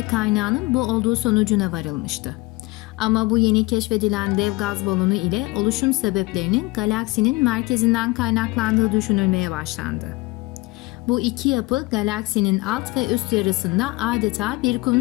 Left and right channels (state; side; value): quieter; right; 22.5 dB